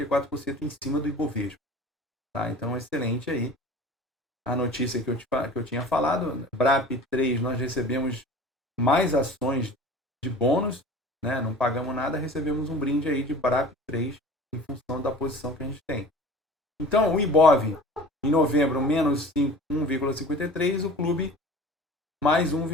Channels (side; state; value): both; normal; correlation 0.42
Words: em cima do Ibovespa. Tá? Então, excelente aí a notícia que eu tinha falado. BRAP 3, nós recebemos mais ações de bônus, né? Não pagamos nada, recebemos um brinde aí de BRAP 3 em função da posição que a gente tem. Então, o Ibov, em novembro, menos 1,53%, o clube mais